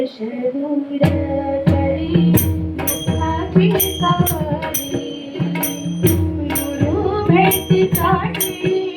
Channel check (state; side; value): identical; both; correlation 1.00